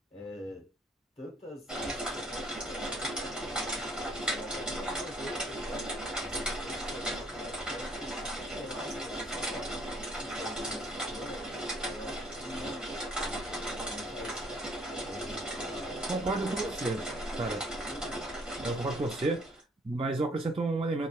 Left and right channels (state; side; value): normal; both; correlation 0.62